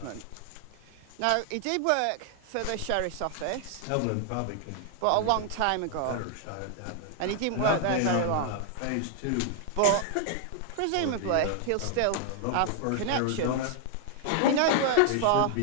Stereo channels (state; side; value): different; both; correlation 0.00